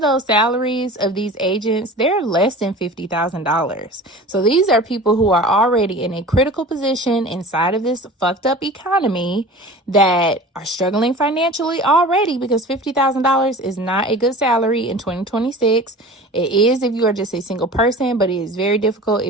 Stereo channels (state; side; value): normal; both; correlation 0.39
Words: those salaries of these agents, they're less than $50,000. So these are people who are already in a critical position inside of this fucked up economy that are struggling financially already, because $50,000 is not a good salary in 2026. It is if you are just a single person, but it is very difficult